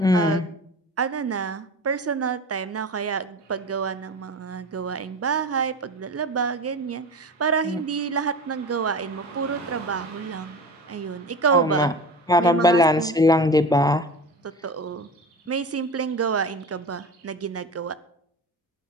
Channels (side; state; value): both; normal; correlation 0.32